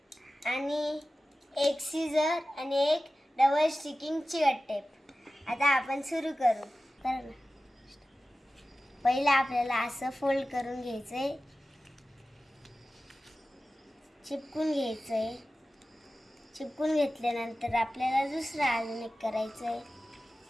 आणि एक सीझर आणि एक डबल स्टिकिंग चिकट टेप। आता आपण सुरू करू। पहिला आपल्याला असं फोल्ड करून घ्यायचंय, चिपकून घ्यायचंय। चिपकून घेतल्यानंतर आपल्याला दुसरं अजून एक करायचंय।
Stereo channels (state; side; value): normal; both; correlation 0.95